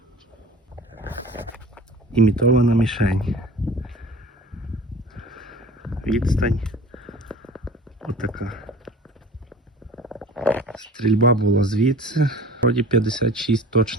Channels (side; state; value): both; normal; correlation 0.42